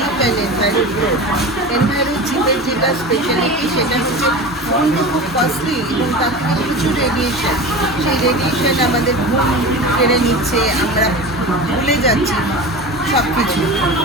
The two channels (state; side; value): normal; both; correlation 0.31